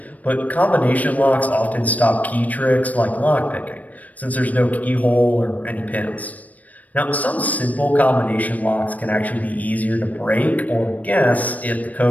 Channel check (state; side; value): late; right; 0.073 ms